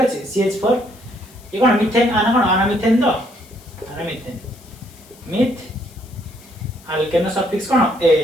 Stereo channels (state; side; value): noise; left; hiss, 25 dB below the sound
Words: CH4 ये कोन मीथेन आना कोन आना मीथेन तो आना मीथेन मिथ अल्केन सफिक्स कोन ए